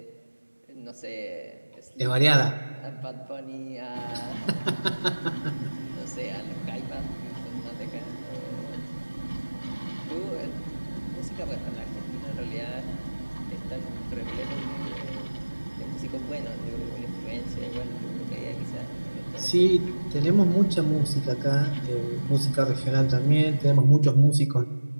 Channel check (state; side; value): inverted; both; correlation -1.00